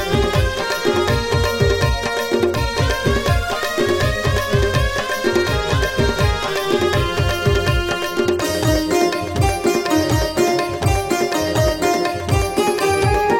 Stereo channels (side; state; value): both; identical; correlation 1.00